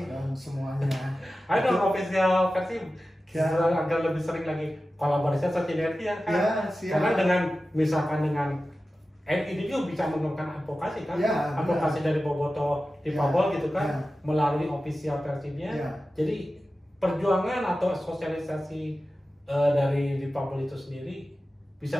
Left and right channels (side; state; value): both; normal; correlation 0.94